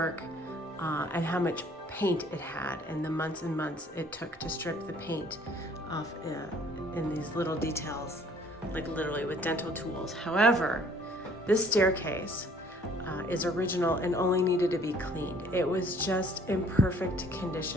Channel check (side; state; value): both; normal; correlation 0.57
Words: and how much paint it had and the months and months it took to strip the paint off in these little details, like literally with dental tools. However, this staircase is original and only needed to be cleaned. It was just in perfect